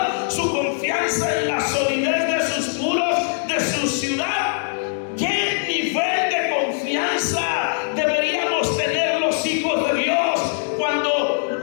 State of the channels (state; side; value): silent; right; digital silence